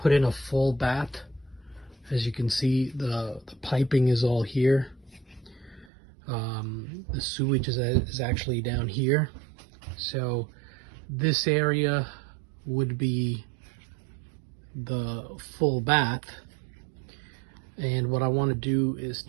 in a full bath. As you can see, the piping is all here. The sewage is actually down here. So this area would be the full bath. And what I want to do is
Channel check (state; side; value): drops out; left; at 5.9 s